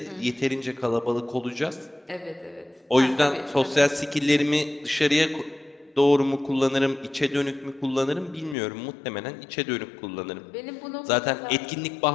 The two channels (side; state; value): right; drops out; at 8.6 s